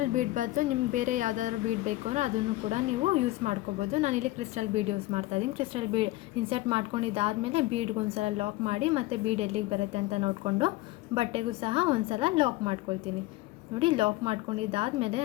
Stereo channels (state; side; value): quieter; right; 18.1 dB